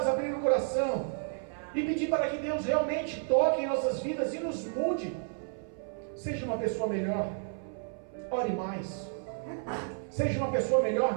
abrir o coração e pedir para que Deus realmente toque em nossas vidas e nos mude. Seja uma pessoa melhor, ore mais. Seja uma pessoa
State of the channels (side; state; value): left; silent; 57 dB below the other